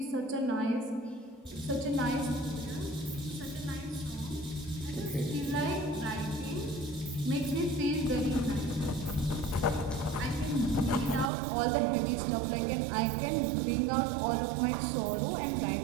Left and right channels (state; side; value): drops out; left; at 11.3 s